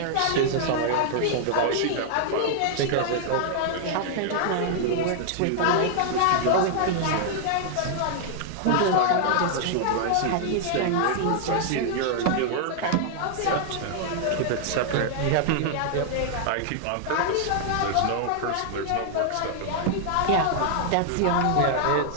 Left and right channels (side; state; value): both; different; correlation -0.01